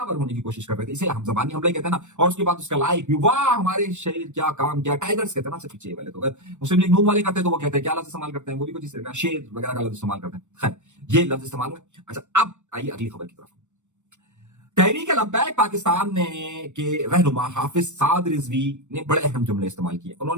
होने की कोशिश कर रहे थे, इसे हम जबानी हमला कहते हैं ना। और उसके बाद उसका लाइक भी, वाह हमारे शेर क्या काम किया, टाइगर्स कहते हैं ना पीछे वाले। तो अगर मुस्लिम लीग नून वाले करते हैं तो वो कहते हैं क्या लफ्ज इस्तेमाल करते हैं, वो भी कुछ इस तरह का शेर वगैरह का लफ्ज इस्तेमाल करते हैं। खैर, ये लफ्ज इस्तेमाल हुआ। अच्छा, अब आइए अगली खबर की तरफ। तहरीक लब्बैक पाकिस्तान ने के रहनुमा हाफिज साद रिजवी ने बड़े अहम जुमले इस्तेमाल किए।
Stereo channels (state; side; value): late; left; 0.84 ms